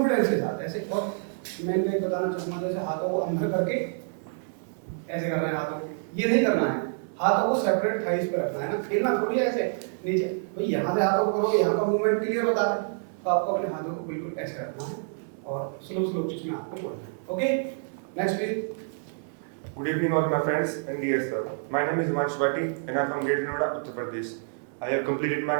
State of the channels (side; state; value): left; silent; 60 dB below the other